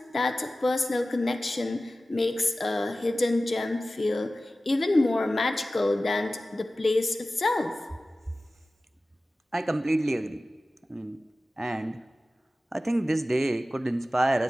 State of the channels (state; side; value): normal; both; correlation 0.96